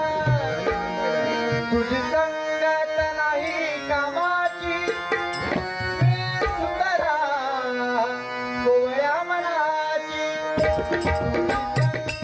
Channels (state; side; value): identical; both; correlation 1.00